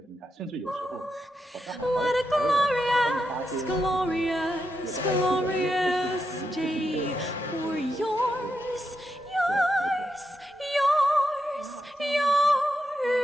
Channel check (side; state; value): both; normal; correlation 0.85